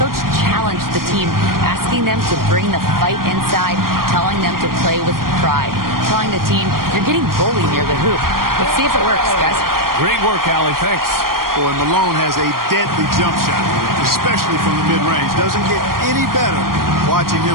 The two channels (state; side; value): late; left; 0.92 ms